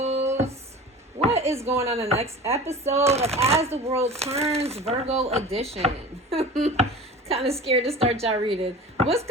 What is going on in the next episode of As the World Turns, Virgo edition? Kind of scared to start y'all reading. What's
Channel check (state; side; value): normal; both; correlation 0.37